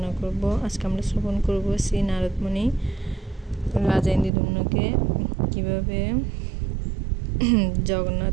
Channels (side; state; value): left; drops out; at 4.3 s